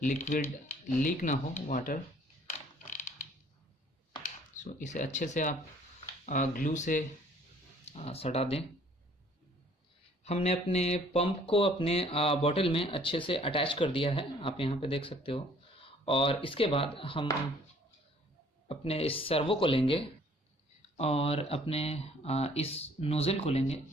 लिक्विड लीक ना हो, वाटर। सो इसे अच्छे से आप ग्लू से सटा दें। हमने अपने पंप को अपने बॉटल में अच्छे से अटैच कर दिया है, आप यहाँ पे देख सकते हो। और इसके बाद हम अपने इस सर्वो को लेंगे और अपने इस नोज़ल को लेंगे।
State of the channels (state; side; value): normal; both; correlation 0.57